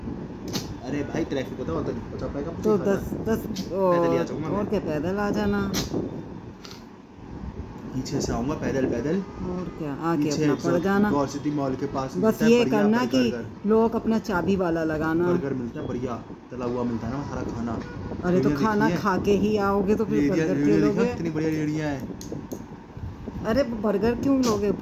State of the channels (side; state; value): both; identical; correlation 1.00